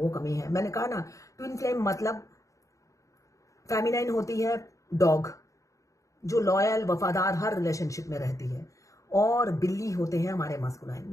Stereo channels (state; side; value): late; right; 0.16 ms